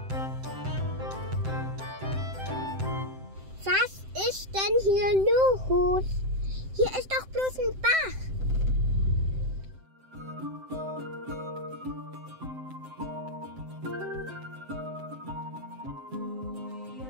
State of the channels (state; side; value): late; left; 7.7 ms